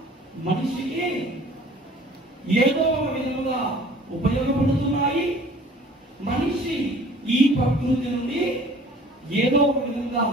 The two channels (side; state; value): both; normal; correlation 0.50